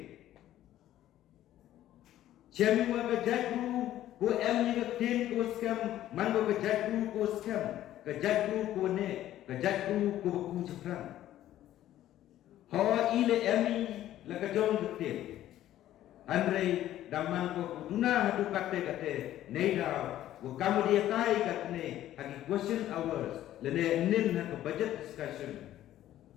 Cemi wa kajatru ko em kaktin ko skam man ko kajatru ko skam kajatru ko ne kajatru ko ku chapran. Hawa ile emi la kajong kaktin. Andre damang ko duna hadu kate neida wa kamu dia tai katne hagi question hours lene nin ha budget discussion.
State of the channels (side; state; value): right; quieter; 13.1 dB